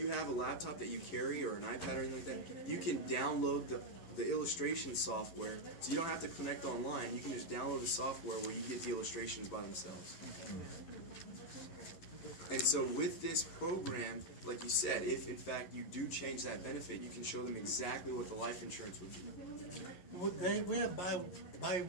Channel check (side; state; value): right; late; 11 ms